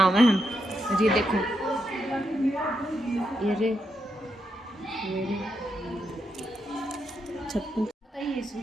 में हम ये देखो ये रे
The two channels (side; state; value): both; normal; correlation 0.82